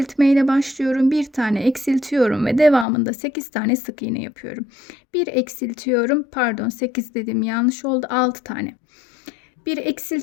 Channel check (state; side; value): drops out; right; at 2.9 s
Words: ile başlıyorum. Bir tane eksiltiyorum ve devamında 8 tane sık iğne yapıyorum. Bir eksiltiyorum, pardon 8 dedim yanlış oldu, 6 tane. Bir